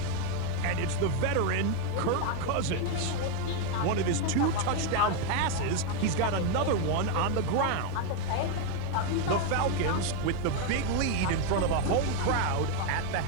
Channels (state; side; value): different; both; correlation 0.01